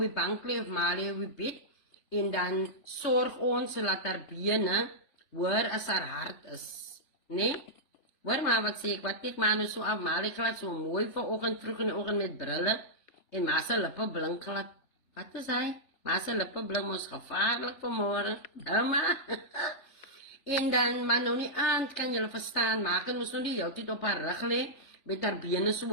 bank lê of ma lê op die bed, en dan sorg ons dat haar bene hoor as haar hart is. Nee? Hoor maar wat sê ek, wat kyk maar nou so af, maar ek laat so mooi vanoggend vroeg in die oggend met brille en ma se lippe blink glad. Wat is hy? Ma se lippe blink mos gevaarlik vanmôre. Ouma. En dan maar nou nie aand kan julle verstaan, maak en ons nou die heeltyd op haar rug lê met haar bene so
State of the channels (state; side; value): late; right; 3.4 ms